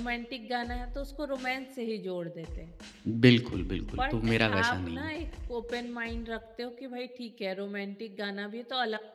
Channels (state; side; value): identical; both; correlation 1.00